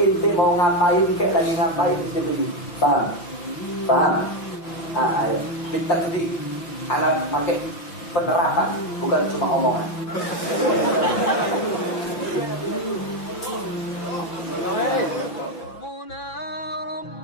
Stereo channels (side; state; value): right; late; 5.8 ms